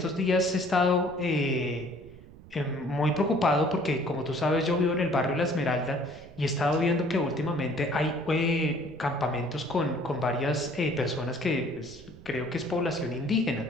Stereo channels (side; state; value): right; noise; rumble, 20 dB below the sound